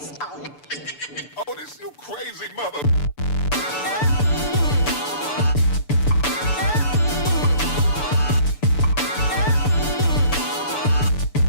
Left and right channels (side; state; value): right; late; 6.9 ms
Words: Oh, this you crazy mother.